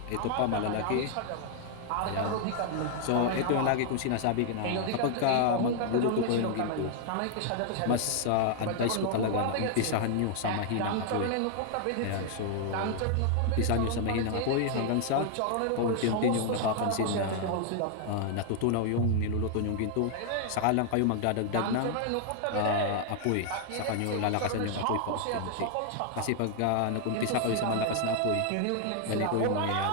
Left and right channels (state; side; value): different; both; correlation 0.00